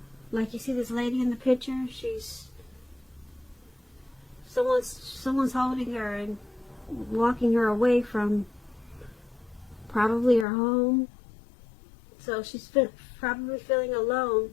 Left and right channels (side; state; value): right; drops out; at 10.5 s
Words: Like you see this lady in the picture, someone's holding her and walking her away from probably her home. So she's probably feeling